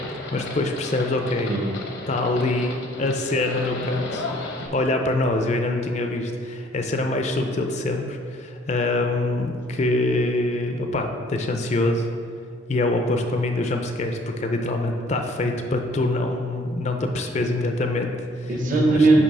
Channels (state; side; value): normal; both; correlation 0.59